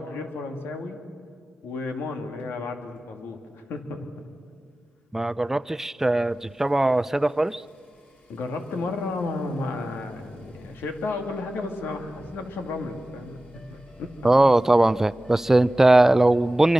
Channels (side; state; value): both; normal; correlation 0.96